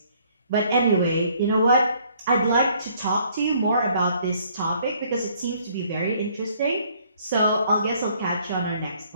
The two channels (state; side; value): inverted; both; correlation -0.63